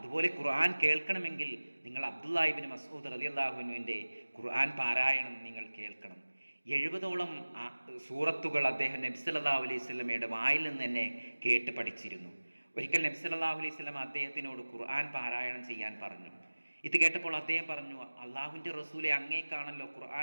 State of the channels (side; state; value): both; inverted; correlation -1.00